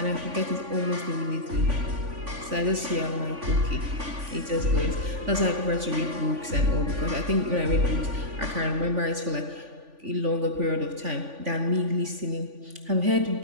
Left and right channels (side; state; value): left; late; 3.5 ms